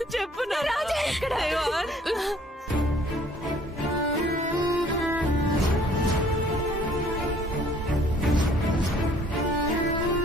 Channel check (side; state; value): both; normal; correlation 0.58